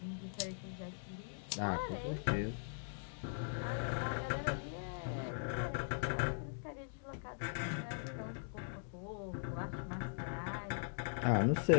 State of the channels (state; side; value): silent; right; digital silence